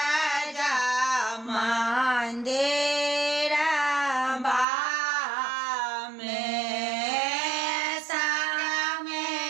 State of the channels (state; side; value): drops out; left; at 4.7 s